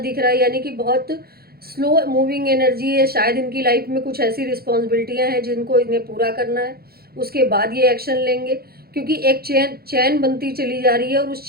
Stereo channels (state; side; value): late; left; 0.45 ms